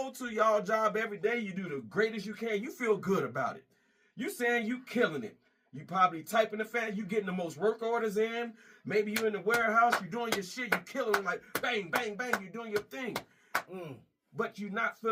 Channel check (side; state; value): both; identical; correlation 1.00